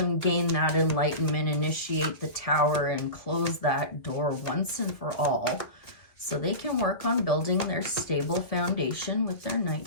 gain that enlightenment, initiate the Tower, and close that door once and for all so they can work on building their stable foundation with their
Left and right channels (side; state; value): right; late; 1.9 ms